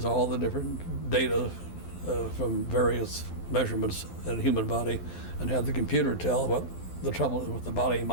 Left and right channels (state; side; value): late; right; 12 ms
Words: all the different data from various measurements in the human body and have the computer tell what the trouble with the body